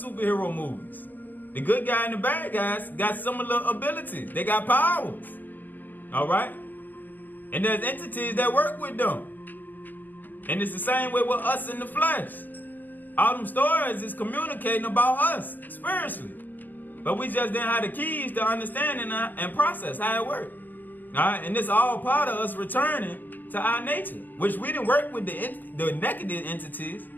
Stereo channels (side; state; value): right; late; 0.086 ms